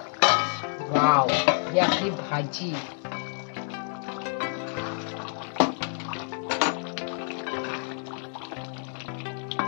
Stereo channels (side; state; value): right; silent; 59 dB below the other